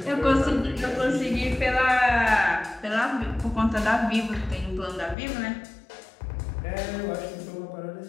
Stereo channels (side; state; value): right; drops out; at 5.2 s